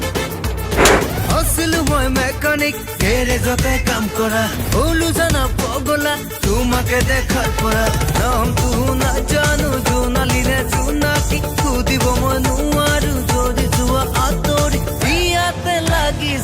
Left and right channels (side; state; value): both; identical; correlation 1.00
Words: আছিলো মই মেকানিক গেৰেজতে কাম কৰা হলো জানা পগলা তোমাকে দেখার পৰা নাম তো না জানো জোনালিনে জোনাকি খুদিব মই নোৱাৰো যদি যোৱা আতৰি বিয়াতে